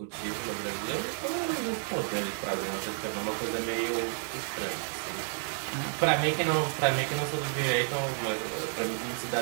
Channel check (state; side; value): silent; left; 57 dB below the other